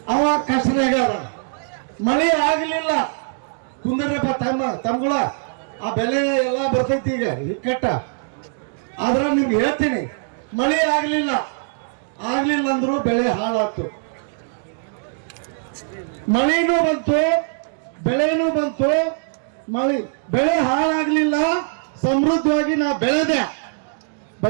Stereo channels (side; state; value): left; silent; digital silence